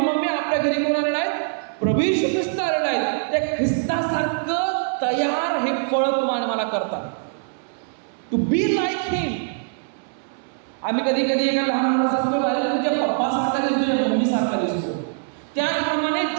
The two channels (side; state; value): left; silent; 63 dB below the other